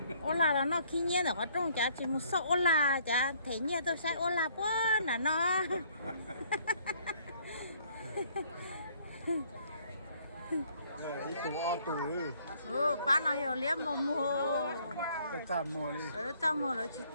ôn là nó khi nhiên ở trong chả chỉ một số ôn là chả thấy nhiên tôi sẽ ôn là quá là nó đi tù bán nó nhiều liếm mà mua cái trăm mua đi trăm mua rồi chỉ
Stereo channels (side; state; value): both; inverted; correlation -0.63